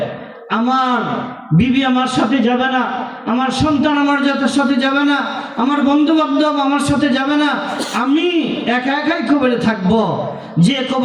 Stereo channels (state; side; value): identical; both; correlation 1.00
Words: আমার বিবি আমার সাথে যাবে না, আমার সন্তান আমার সাথে যাবে না, আমার বন্ধু বান্ধব আমার সাথে যাবে না, আমি একা একাই কবরে থাকব। যে